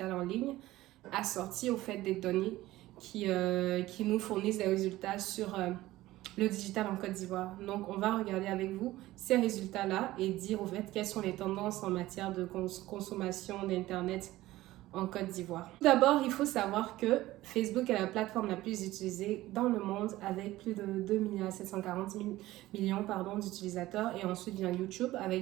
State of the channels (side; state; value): left; quieter; 16.7 dB